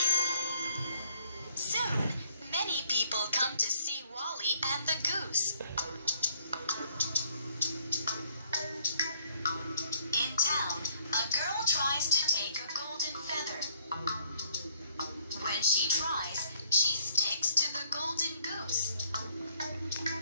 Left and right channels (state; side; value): inverted; both; correlation -0.64